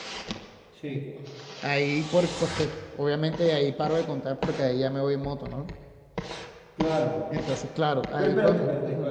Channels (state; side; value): identical; both; correlation 1.00